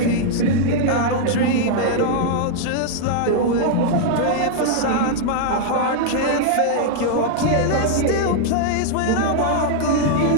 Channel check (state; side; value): different; both; correlation -0.01